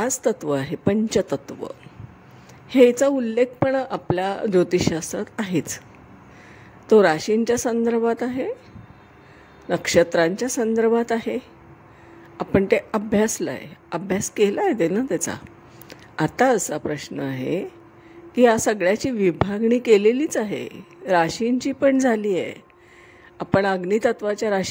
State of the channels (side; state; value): both; identical; correlation 1.00